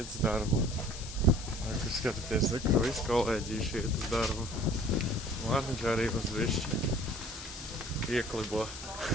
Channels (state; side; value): noise; left; hiss, 11 dB below the sound